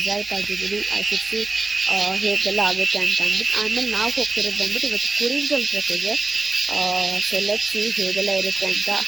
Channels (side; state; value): left; quieter; 3.5 dB